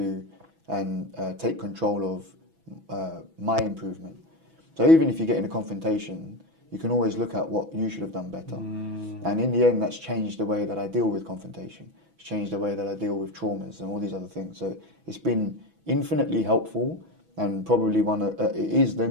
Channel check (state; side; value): late; left; 6.1 ms